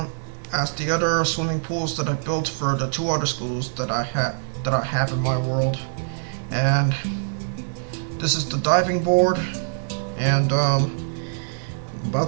swimming pools that I built for the 2 other schools that I have in my world. And this is the diving board, and I'm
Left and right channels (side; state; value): left; silent; digital silence